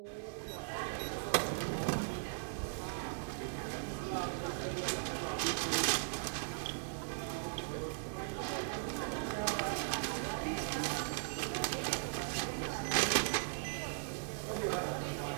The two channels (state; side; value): silent; left; digital silence